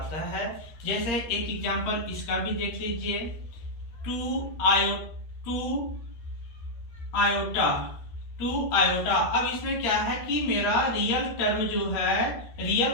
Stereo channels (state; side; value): late; right; 13 ms